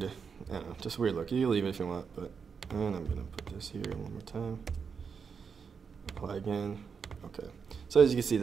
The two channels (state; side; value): quieter; left; 6.1 dB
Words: I don't know, just weird look. You can leave it if you want, but and I'm gonna put this here one more time. Apply again. Okay. So as you can see,